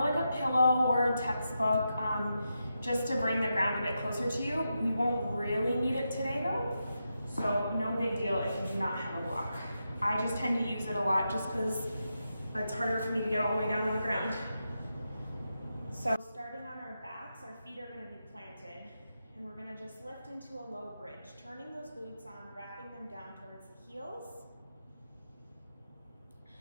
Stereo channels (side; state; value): both; inverted; correlation -0.87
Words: a pillow or a textbook, just to bring the ground a bit closer to you. We won't really need it today though, so no big deal if you do not have a block. I just tend to use it a lot just because it's harder for me to get all the way down on the ground. So starting on our backs, our feet are going to be planted, and we're going to just lift into a low bridge, turning those glutes on, wrapping them down towards the heels.